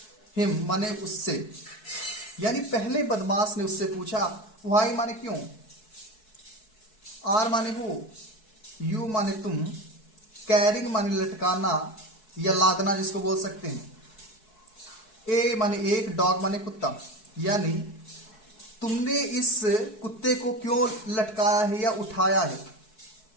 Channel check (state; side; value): late; right; 4.6 ms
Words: हिम माने उससे, यानी पहले बदमाश ने उससे पूछा। व्हाई माने क्यों, आर माने वो, यू माने तुम, कैरिंग माने लटकाना या लादना जिसको बोल सकते हैं, ए माने एक, डॉग माने कुत्ता, यानी तुमने इस कुत्ते को क्यों लटकाया है या उठाया है।